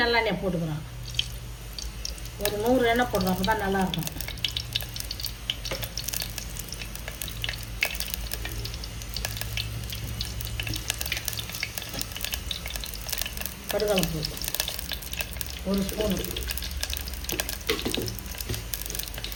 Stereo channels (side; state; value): both; identical; correlation 1.00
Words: நல்லெண்ணெய் போட்டுக்கிறோம். ஒரு 100 எண்ணெய் போடுறோம், அப்போ தான் நல்லாயிருக்கும். கடுகு ஒரு ஸ்பூன்,